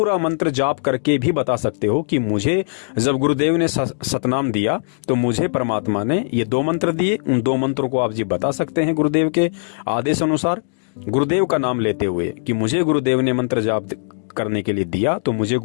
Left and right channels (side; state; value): right; silent; digital silence